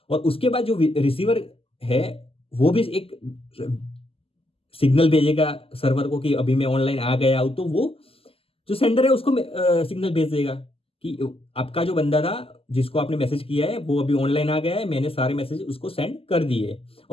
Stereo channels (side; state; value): right; late; 0.27 ms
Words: और उसके बाद जो रिसीवर है वो भी एक सिग्नल भेजेगा सर्वर को कि अभी मैं ऑनलाइन आ गया हूं। तो वो जो सेंडर है उसको सिग्नल भेज देगा कि आपका जो बंदा था जिसको आपने मैसेज किया है वो अभी ऑनलाइन आ गया है, मैंने सारे मैसेज उसको सेंड कर दिए।